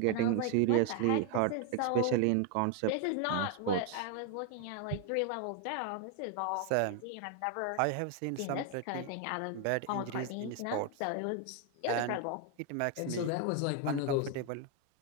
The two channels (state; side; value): different; both; correlation 0.01